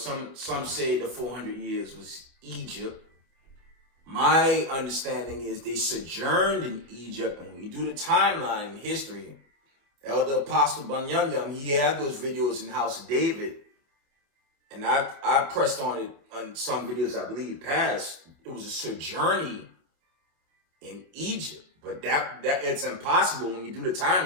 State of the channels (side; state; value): left; late; 28 ms